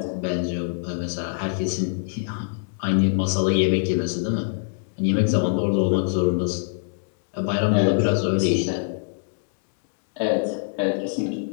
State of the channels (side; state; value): right; silent; digital silence